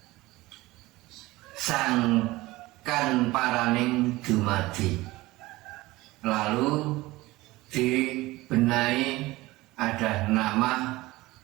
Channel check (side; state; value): left; quieter; 19.6 dB